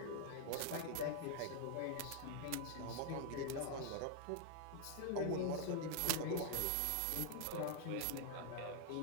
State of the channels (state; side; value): different; both; correlation 0.00